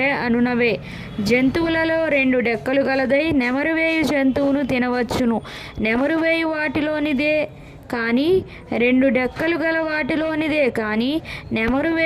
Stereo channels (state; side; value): identical; both; correlation 1.00